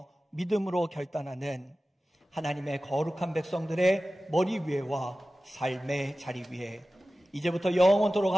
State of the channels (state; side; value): normal; both; correlation 0.95